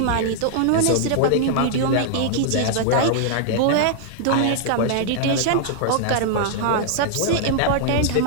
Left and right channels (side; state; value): both; different; correlation -0.01